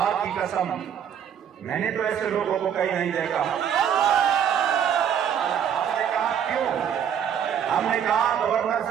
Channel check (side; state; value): left; quieter; 8.7 dB